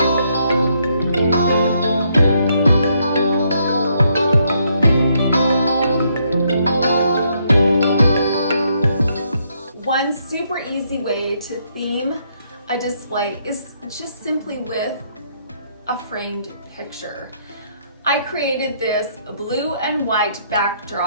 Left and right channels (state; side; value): inverted; both; correlation -0.73